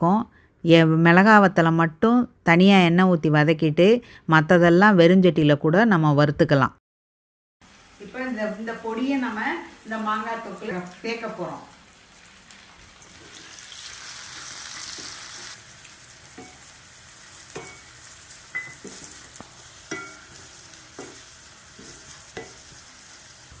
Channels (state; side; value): identical; both; correlation 1.00